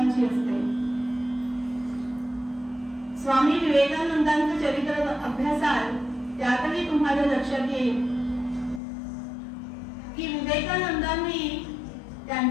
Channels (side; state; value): right; drops out; at 8.8 s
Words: असते. स्वामी विवेकानंदांचं चरित्र अभ्यासाल त्यातही तुम्हाला लक्षात येईल की विवेकानंदांनी